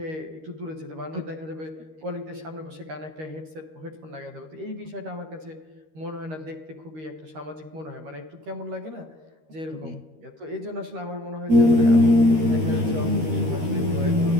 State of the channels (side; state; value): left; late; 13 ms